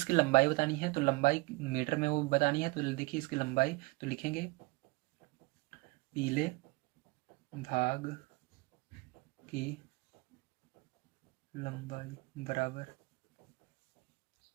लंबाई बतानी है। तो लंबाई मीटर में वो बतानी है। तो देखिए इसकी लंबाई, तो लिखेंगे पीले भाग की लंबाई बराबर,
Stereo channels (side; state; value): left; quieter; 24.6 dB